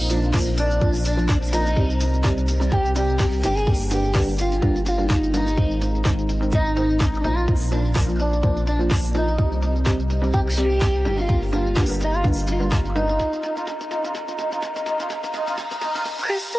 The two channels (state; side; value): normal; both; correlation 0.97